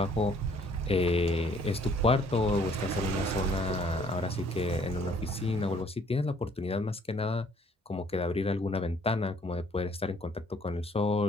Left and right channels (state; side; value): normal; both; correlation 0.61